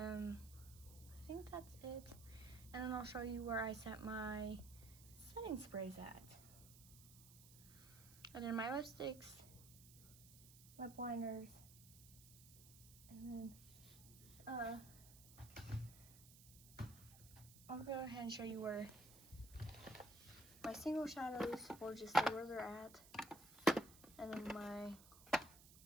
think that's it. And then I'll show you where I set my setting sprays at. And then my lipsticks, lip liners, and then I'll go ahead and show you where my single shadows will just stay where they're at. And then my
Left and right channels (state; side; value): noise; right; hiss, 19 dB below the sound